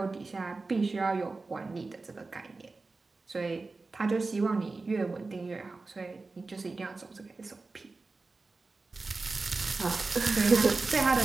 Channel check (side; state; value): left; quieter; 3.7 dB